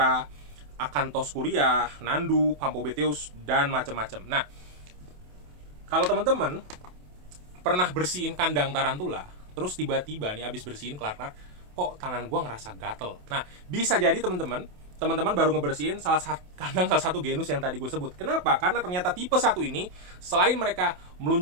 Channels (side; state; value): left; late; 28 ms